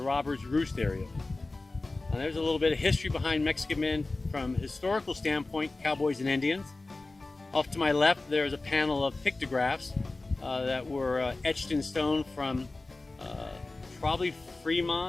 Roost area. Now, there's a little bit of history behind Mexican Men from a historical standpoint, cowboys and Indians. Off to my left, there's a panel of pictographs that were etched in stone from probably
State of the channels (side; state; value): right; quieter; 3.2 dB